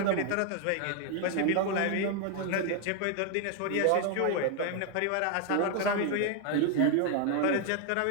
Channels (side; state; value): both; different; correlation 0.00